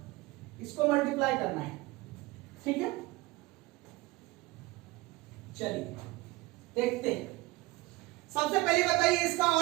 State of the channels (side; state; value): left; quieter; 21.0 dB